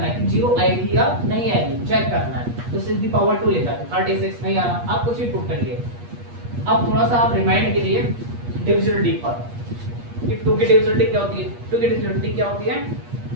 है कि 0 आएगी या नहीं आएगी, चेक करना है। तो 6 दी पावर 2 लिखा तो 36 नहीं आ रहा, आप कुछ भी पुट करिए। अब थोड़ा सा आप रिमाइंड कीजिए डिविजिबिलिटी पर कि 2 की डिविजिबिलिटी क्या होती है। 2 की डिविजिबिलिटी क्या होती है?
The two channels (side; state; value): left; late; 8.4 ms